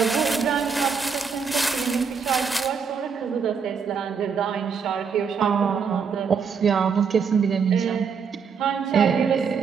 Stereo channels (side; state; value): left; quieter; 6.1 dB